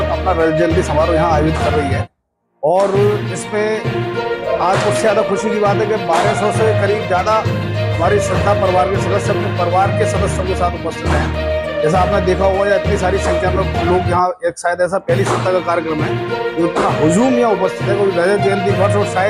अपना रजत जयंती समारोह यहाँ आयोजित कर रही है। और इसमें आज कुछ ज़्यादा खुशी की बात है कि 1200 से करीब ज़्यादा हमारी संस्था परिवार के सदस्य अपने परिवार के सदस्यों के साथ उपस्थित हैं। जैसा आपने देखा होगा, या इतनी सारी संख्या में लोग यहाँ, एक शायद ऐसा पहली सप्ताह का कार्यक्रम है जो इतना हुजूम यहाँ उपस्थित है, क्योंकि रजत जयंती वर्ष और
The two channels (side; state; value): both; identical; correlation 1.00